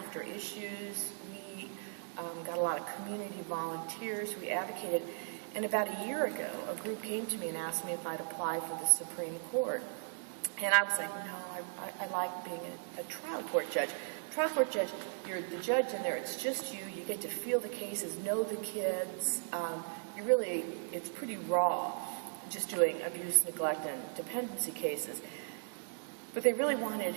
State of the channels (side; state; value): left; silent; 53 dB below the other